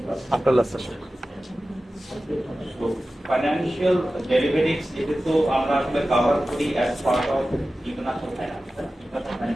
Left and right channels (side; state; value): both; normal; correlation 0.95